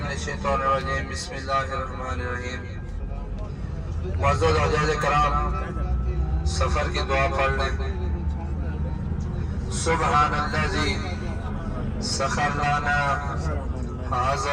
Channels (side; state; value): both; identical; correlation 1.00